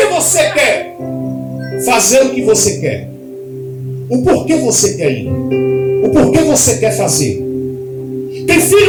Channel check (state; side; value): identical; both; correlation 1.00